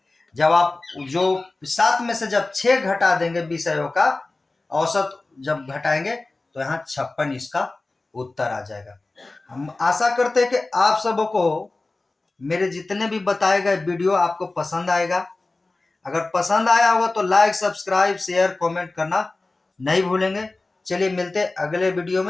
जब आप जो 7 में से जब 6 घटा देंगे विषयों का औसत जब घटाएंगे तो यहाँ 56 इसका उत्तर आ जाएगा। हम आशा करते हैं कि आप सबों को मेरे जितने भी बताए गए वीडियो आपको पसंद आएगा। अगर पसंद आया होगा तो लाइक, सब्सक्राइब, शेयर, कमेंट करना नहीं भूलेंगे। चलिए मिलते हैं अगले वीडियो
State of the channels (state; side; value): quieter; right; 3.2 dB